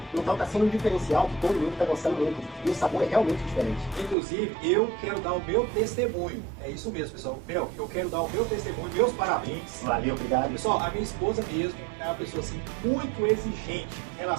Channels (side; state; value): left; drops out; at 4.2 s